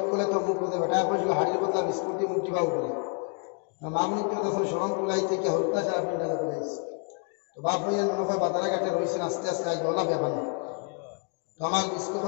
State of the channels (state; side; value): quieter; right; 35.9 dB